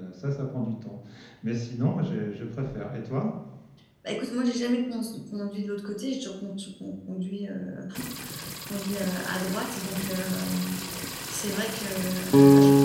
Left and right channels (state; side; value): identical; both; correlation 1.00